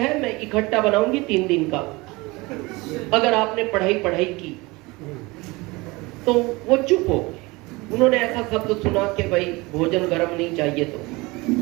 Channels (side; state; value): left; quieter; 23.5 dB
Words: मैं इकट्ठा बनाऊंगी 3 दिन का, अगर आपने पढ़ाई की। तो वो चुप हो गए। उन्होंने ऐसा शब्द सुना कि भाई भोजन गर्म नहीं चाहिए तो,